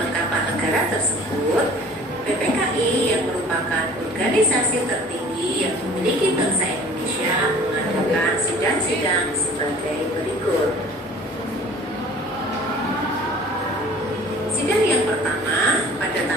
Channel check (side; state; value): both; normal; correlation 0.48